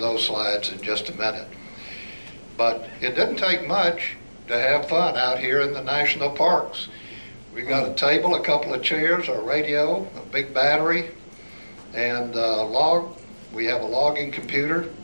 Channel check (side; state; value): both; inverted; correlation -1.00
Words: slides in just a minute. But it didn't take much to have fun out here in the national parks. We got a table, a couple of chairs, a radio, a big battery, and a log. We have a logging computer,